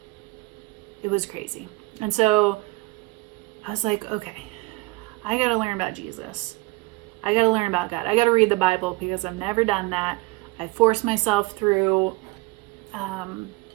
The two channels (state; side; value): quieter; left; 23.2 dB